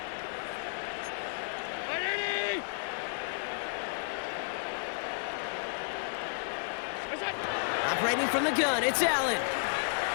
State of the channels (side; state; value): right; silent; digital silence